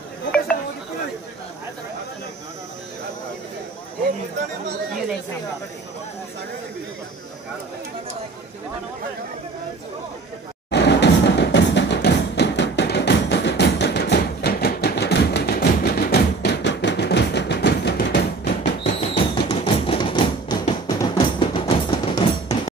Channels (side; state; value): left; quieter; 3.9 dB